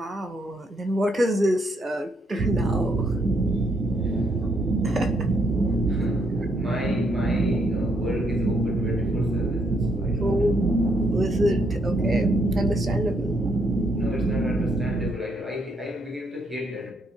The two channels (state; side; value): normal; both; correlation 0.74